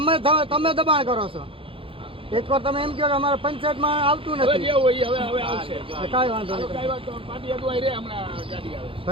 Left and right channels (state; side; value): late; left; 0.26 ms